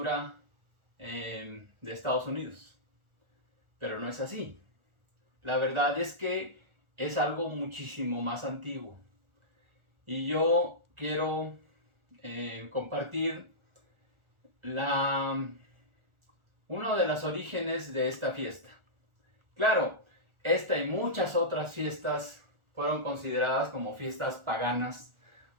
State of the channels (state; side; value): late; left; 1.4 ms